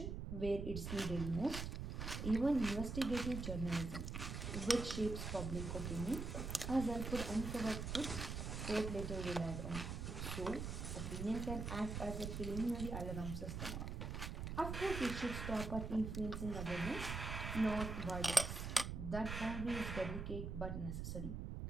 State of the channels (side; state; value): right; noise; rumble, 4 dB below the sound